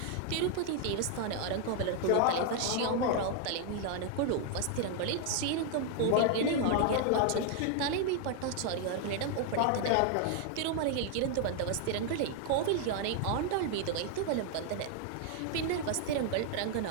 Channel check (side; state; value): both; different; correlation 0.00